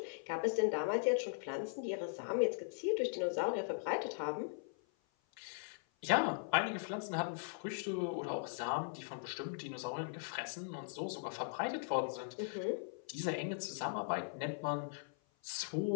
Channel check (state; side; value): silent; right; 51 dB below the other